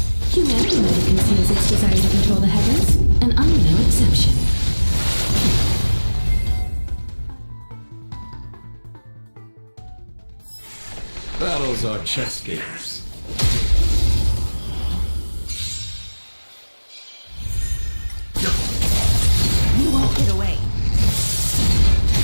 Humanity never conceals its desire to control the heavens, and I'm no exception. Battles are chess games. You won't get away.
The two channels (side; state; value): both; inverted; correlation -1.00